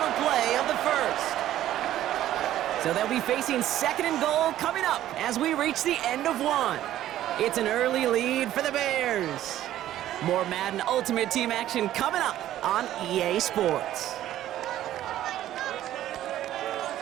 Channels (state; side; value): quieter; left; 13.0 dB